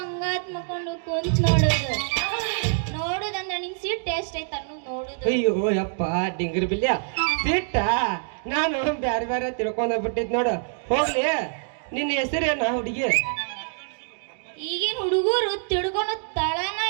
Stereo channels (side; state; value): left; silent; 62 dB below the other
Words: ಮಕ್ಕೊಂಡು ಕುಂತ್ ನೋಡುದು ನೋಡುದಂದ್ರ ನಿಂಗ್ ಸಿಟ್ಟು ಎಷ್ಟೈತ ನೋಡುದು. ಅಯ್ಯೋ ಯಪ್ಪ ಡಿಂಗರ್ ಬಿಲ್ಯ ಸಿಟ್ಟ ನಾನು ಬ್ಯಾರೆ ಬ್ಯಾರೆ ತಿಳ್ಕೊಂಡ ಬಿಟ್ಟಿದ್ ನೋಡು. ಹೋಗ್ಲಿ ನಿನ್ನ ಹೆಸರೇನ ಹುಡುಗಿ? ಈಗಿನ ಹುಡುಗರು ತಿಳ್ಕೊಳೋ ತಳನ